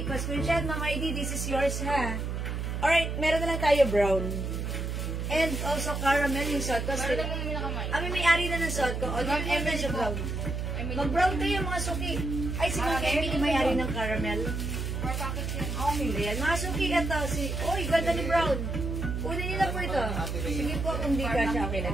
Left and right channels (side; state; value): right; noise; hum, 3 dB below the sound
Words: pa-screenshot, Ma'am Heidi, this is yours, ha? Alright, meron na lang tayo brown. And also caramel yung suot ko. Meron naman yung nakamay. Kami may-ari na ng suot ko. O, yung siya brown. Mag-brown kayo, mga suki. Ay, si Ma'am Emily may-ari ng caramel. 4 packets yan. Okay, ayan. Mga suki, ito. Uy, ganda ni brown. Kunin nila po ito. Sige po, kung di ka siya, okay